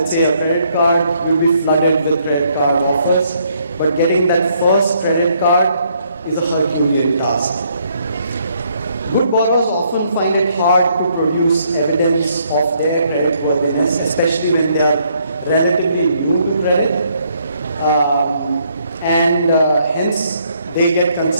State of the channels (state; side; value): inverted; both; correlation -0.70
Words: say, a credit card, you'll be flooded with credit card offers, but getting that first credit card is a Herculean task. Good borrowers often find it hard to produce evidence of their creditworthiness, especially when they are relatively new to credit, and hence they get